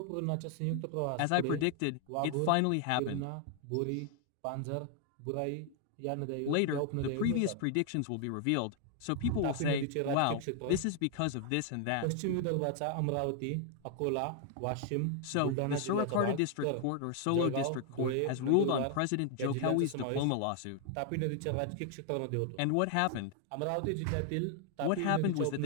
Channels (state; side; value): different; both; correlation 0.00